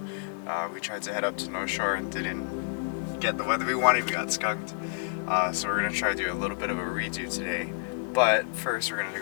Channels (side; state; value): right; silent; digital silence